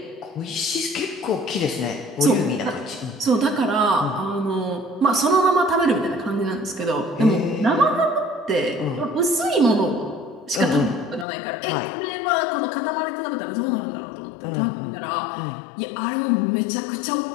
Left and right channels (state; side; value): drops out; right; at 11.2 s